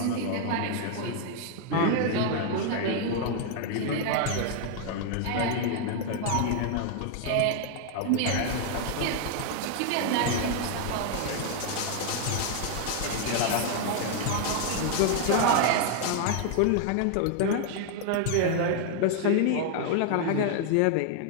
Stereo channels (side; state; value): both; different; correlation 0.00